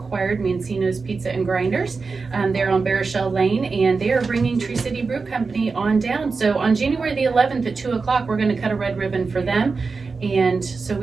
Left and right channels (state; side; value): quieter; left; 4.5 dB